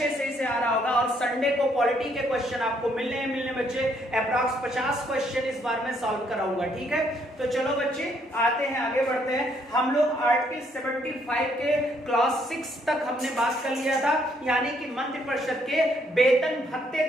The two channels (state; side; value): normal; both; correlation 0.70